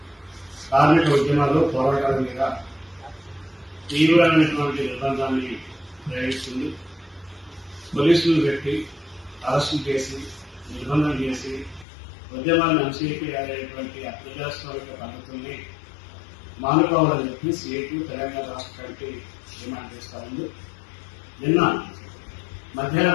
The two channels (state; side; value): drops out; right; at 11.9 s